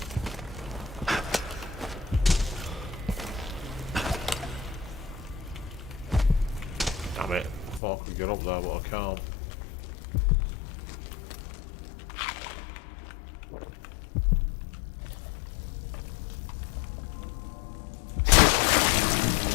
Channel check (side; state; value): right; drops out; at 7.8 s